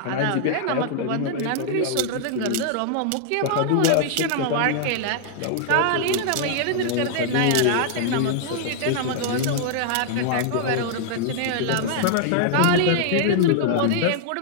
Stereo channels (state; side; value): different; both; correlation 0.00